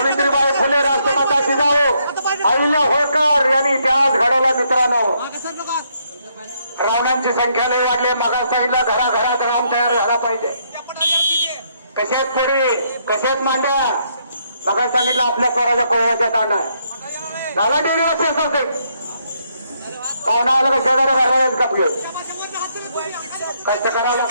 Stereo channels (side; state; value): both; inverted; correlation -0.73